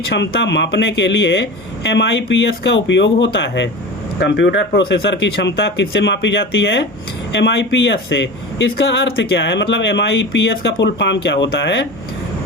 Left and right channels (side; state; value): both; normal; correlation 0.31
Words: मापने के लिए MIPS का उपयोग होता है। कंप्यूटर प्रोसेसर की क्षमता किससे मापी जाती है? MIPS से। इसका अर्थ क्या है, मतलब MIPS का फुल फॉर्म क्या होता है?